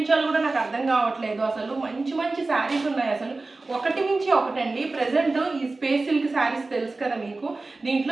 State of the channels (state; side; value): quieter; left; 3.4 dB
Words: కూడా నాకు అర్థం కావట్లేదు. అసలు మంచి మంచి శారీస్ ఉన్నాయి, అసలు ఒకటి మించి ఒకటండి. ప్రజెంట్ ఈ స్పేస్ సిల్క్ శారీస్ తెలుసు కదా మీకు,